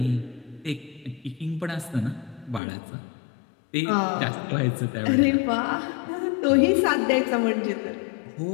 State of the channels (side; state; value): right; drops out; at 2.6 s